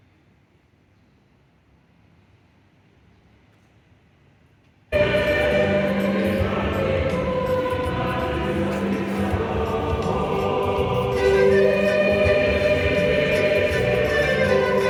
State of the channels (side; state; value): both; identical; correlation 1.00